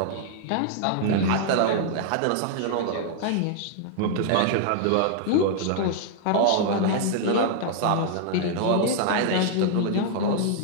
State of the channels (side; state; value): both; different; correlation -0.01